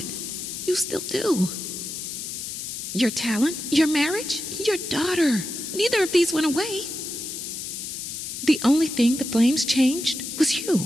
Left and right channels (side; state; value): left; noise; hiss, 7 dB below the sound